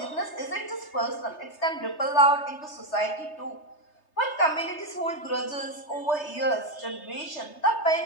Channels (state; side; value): late; right; 3.3 ms